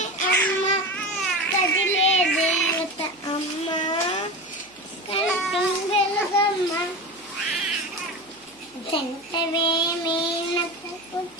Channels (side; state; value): right; noise; hum, 29 dB below the sound